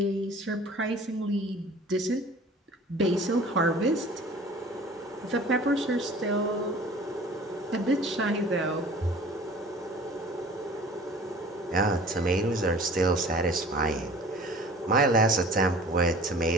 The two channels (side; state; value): both; normal; correlation 0.45